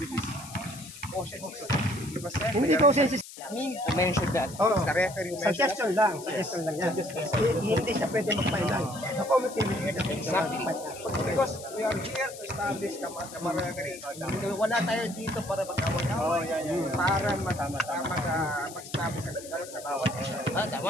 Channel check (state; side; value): noise; left; hiss, 15 dB below the sound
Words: which is quotient system. Hindi quotient system. Me to mention that. The referee who mentioned Suggestion lang yan. Hindi siya pwede mag-final. The committee will get exactly. Because we are here to establish camaraderie. Wala tayo dito para mag-away-away. Para mag-establish ang sigaret sa bawat isa.